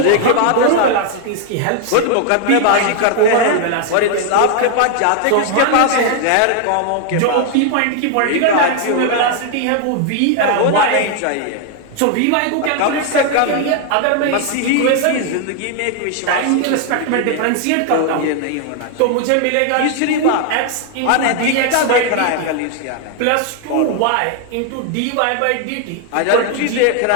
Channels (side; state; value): both; different; correlation 0.00